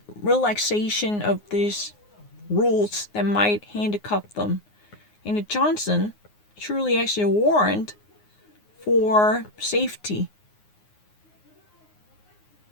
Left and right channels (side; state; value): right; late; 9.6 ms